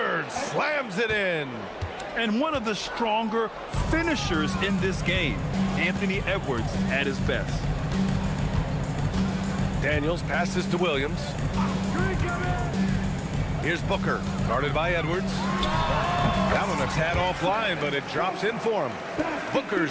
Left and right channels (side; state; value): both; identical; correlation 1.00